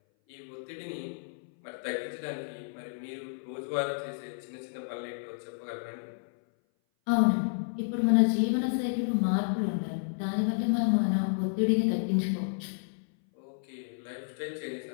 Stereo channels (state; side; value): silent; right; 57 dB below the other